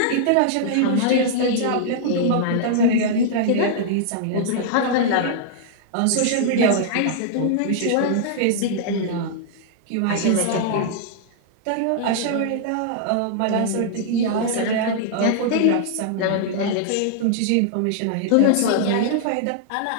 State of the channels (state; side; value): different; both; correlation -0.01